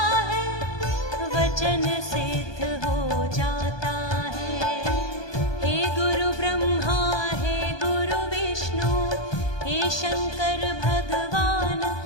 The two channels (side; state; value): right; late; 1.2 ms